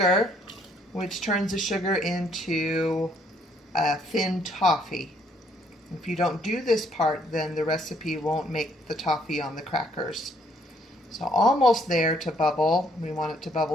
which turns the sugar into thin toffee. If you don't do this part, then the recipe won't make the toffee on the crackers. So almost there to bubble. We want it to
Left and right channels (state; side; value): normal; both; correlation 0.67